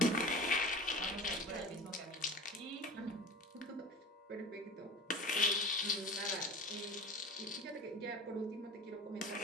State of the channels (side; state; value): both; normal; correlation 0.37